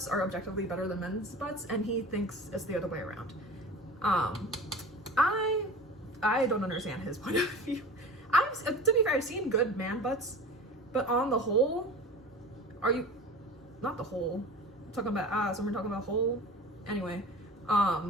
are objectively better than men's butts, and he thinks it's the other way around. I don't understand his point of view. To be fair, I've seen good man butts, but on the whole, not the whole, I'm talking about ass, and we're talking about whole. Anyway,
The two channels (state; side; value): normal; both; correlation 0.36